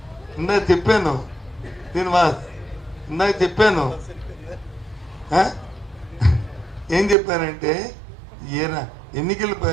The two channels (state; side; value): drops out; left; at 7.2 s